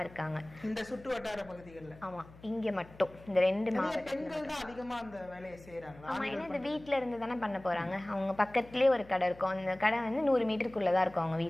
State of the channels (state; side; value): noise; left; hum, 21 dB below the sound